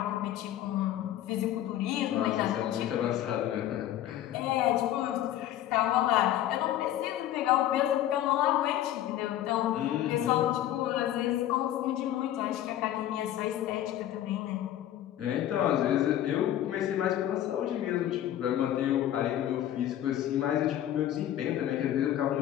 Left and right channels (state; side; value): quieter; right; 12.3 dB